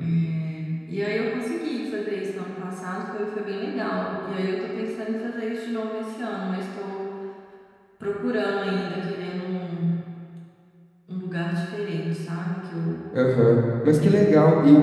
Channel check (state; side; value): identical; both; correlation 1.00